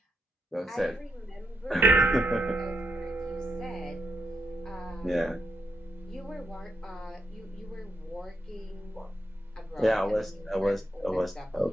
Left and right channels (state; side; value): normal; both; correlation 0.82